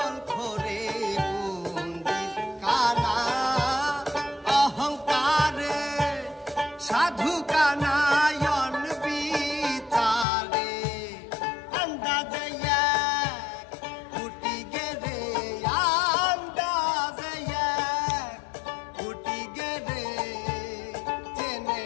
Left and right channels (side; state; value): right; drops out; at 10.2 s